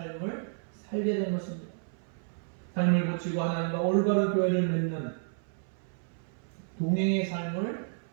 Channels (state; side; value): silent; left; 57 dB below the other